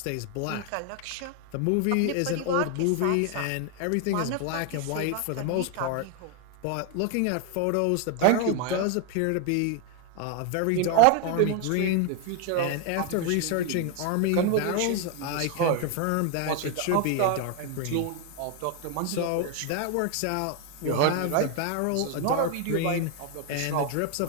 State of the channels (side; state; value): both; different; correlation 0.01